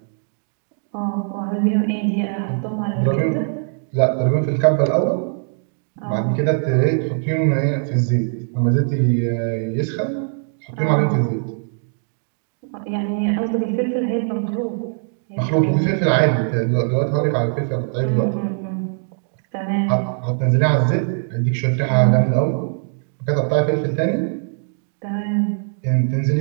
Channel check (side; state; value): left; silent; 64 dB below the other